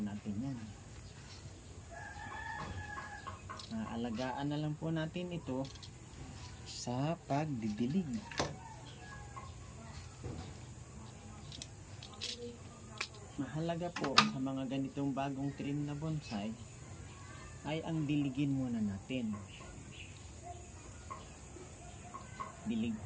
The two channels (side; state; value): both; identical; correlation 1.00